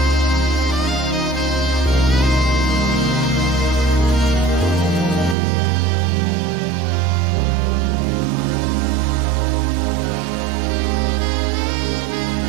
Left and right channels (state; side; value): drops out; left; at 5.4 s